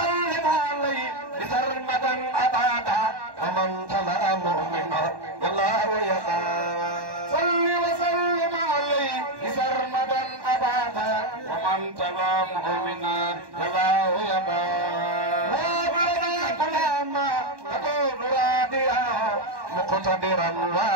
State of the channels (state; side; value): late; left; 1.1 ms